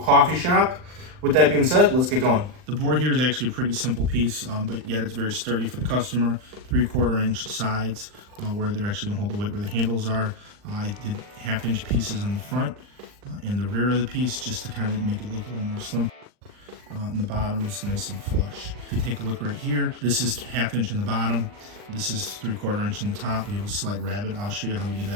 shop. With that being said, let's get going. The board here is actually a pretty simple piece, but yet it's very sturdy for the customer. 3/4 inch sides where they're actually going to hold the weight where the handles are. I did 1/2 inch pieces on the front and the rear of the piece just to kind of make it look a little more slim. And the bottom is nice and flush. If you take a look right here, this is 1/2 inch in the bottom. This is 3/4 inch in the top. We have a slight rabbet. I'll show you how we do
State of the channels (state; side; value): late; left; 39 ms